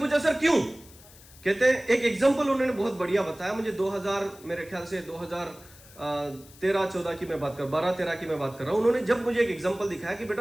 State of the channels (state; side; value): noise; left; hiss, 22 dB below the sound